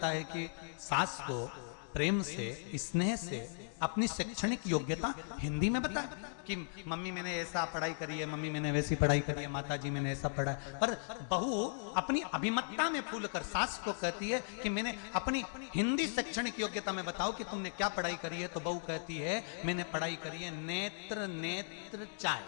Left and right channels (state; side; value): silent; right; digital silence